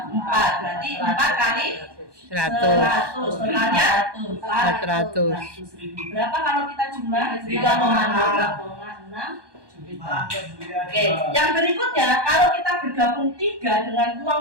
4. Berarti 4 kali 100. Totalnya 400.000. Berapa kalau kita jumlah? 3,6 juta. Oke, yang berikutnya kalau kita bergabung 3 dengan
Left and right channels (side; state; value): left; late; 1.2 ms